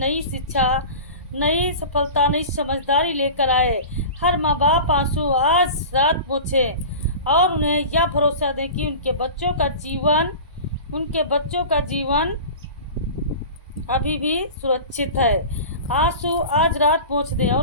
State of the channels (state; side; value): inverted; both; correlation -0.34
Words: शिक्षा, नई सफलता, नई समझदारी लेकर आए। हर माँ बाप आंसू आज रात पोंछे और उन्हें यह भरोसा दें कि उनके बच्चों का जीवन अभी भी सुरक्षित है। आंसू आज रात पोंछ दें